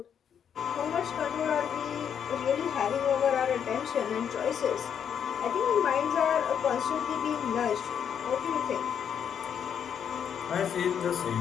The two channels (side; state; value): right; quieter; 8.2 dB